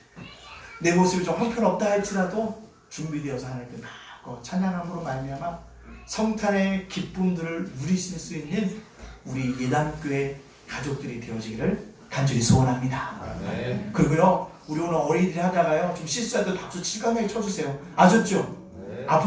내 모습이 좀 형편없다 할지라도 준비되어서 하나님께 받고 찬양함으로 말미암아 성탄의 기쁨들을 누리실 수 있는 우리 예단교회 가족들이 되어지기를 간절히 소원합니다. 네. 그리고요, 우리 오늘 어린이들이 하다가요 좀 실수할 때 박수 실감나게 쳐주세요. 아셨죠? 네.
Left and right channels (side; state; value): both; identical; correlation 1.00